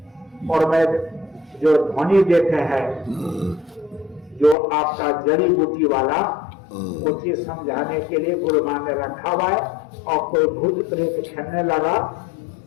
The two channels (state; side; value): drops out; right; at 4.5 s